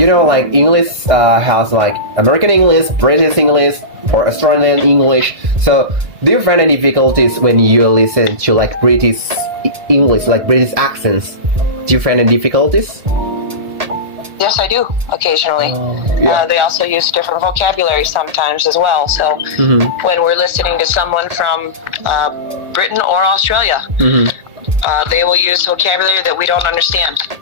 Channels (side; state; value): left; late; 1.4 ms